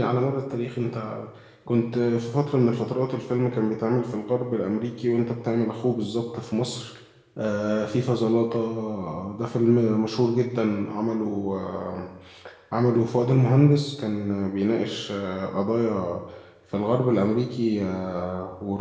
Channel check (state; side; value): identical; both; correlation 1.00